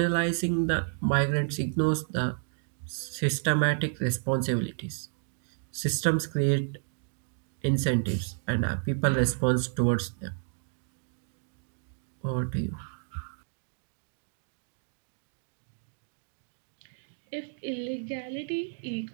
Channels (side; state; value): left; silent; digital silence